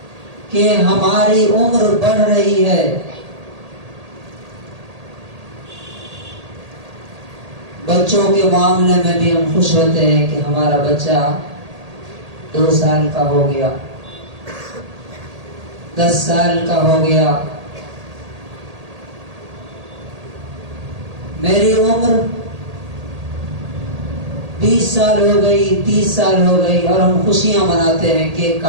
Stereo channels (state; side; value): late; left; 1.8 ms